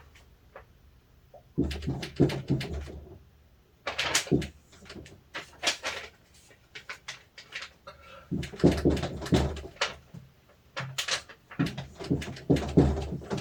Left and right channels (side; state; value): both; identical; correlation 1.00